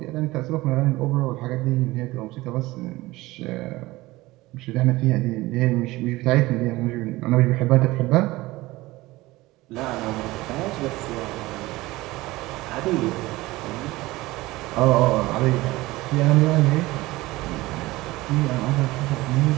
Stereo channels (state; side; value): quieter; left; 19.3 dB